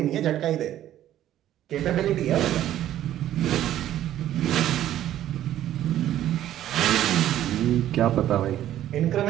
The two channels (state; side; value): quieter; left; 12.3 dB